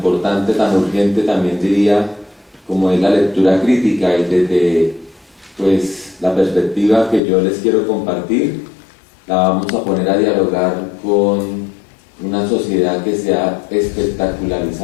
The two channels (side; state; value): right; drops out; at 7.2 s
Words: tan urgente, también diría, como es la lectura crítica, y desde la perspectiva que yo les quiero compartir, la vamos a poner a dialogar con una sociedad que se ha